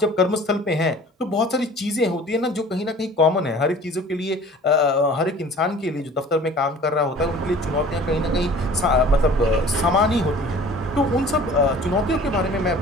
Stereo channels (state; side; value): normal; both; correlation 0.46